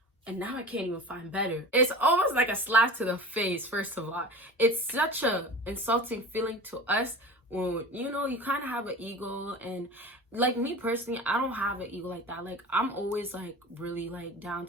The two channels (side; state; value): both; normal; correlation 0.35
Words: And now I can't even find better. It's almost like a slap to the face, first of all. It's such a insulting feeling to us when, you kind of have an ego. And like me personally, I don't have an ego like that. Like, I'm always like really like down